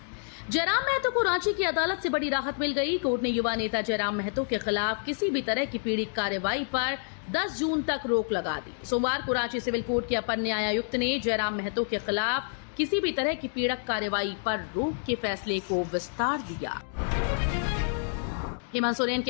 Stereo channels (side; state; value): right; silent; digital silence